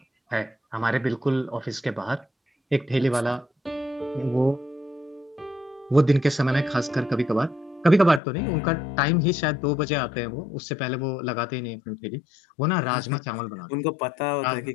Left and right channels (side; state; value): right; drops out; at 8.2 s